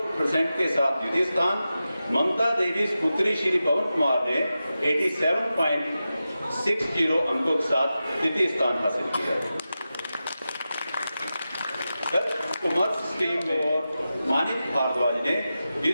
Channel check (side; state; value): both; inverted; correlation -0.92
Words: के साथ द्वितीय स्थान, ममता देवी पुत्री श्री पवन कुमार ने 87.60 अंकों के साथ तृतीय स्थान हासिल किया। कॉमर्स स्ट्रीम में मानिक भारद्वाज ने